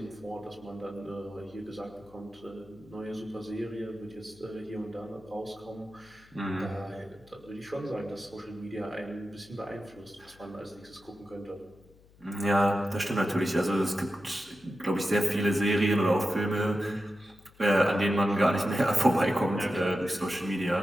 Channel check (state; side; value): noise; left; hum, 27 dB below the sound